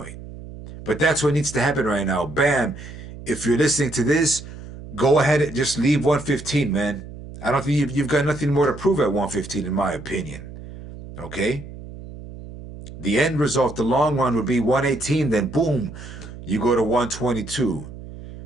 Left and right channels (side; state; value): right; noise; hum, 14 dB below the sound